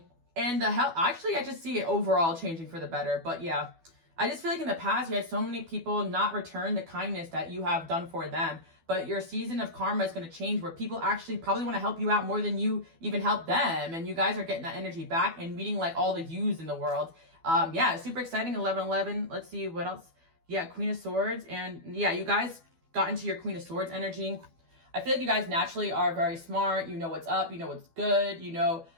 And the health, actually, I just see it overall changing for the better. But yeah, I just feel like in the past, you had so many people not return the kindness that you have done for them. But your season of karma is going to change, where people actually probably want to help you out more than you even help them. And you guys are getting that energy back and meeting like all the yous in the world. Yeah, super exciting. 11/11. Let's see what else. Yeah, Queen of Swords. And yeah, you guys got into your Queen of Swords energy. I feel like you guys naturally are very smart. You know what's up. You know what's good. You know,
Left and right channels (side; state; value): left; late; 12 ms